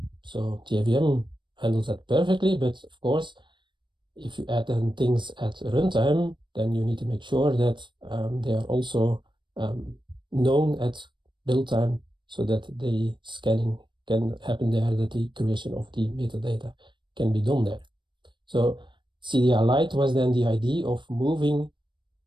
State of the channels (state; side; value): late; left; 0.23 ms